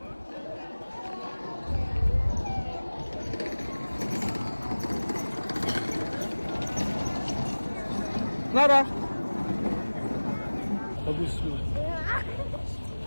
Nara, bagus tuh.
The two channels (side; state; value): both; inverted; correlation -1.00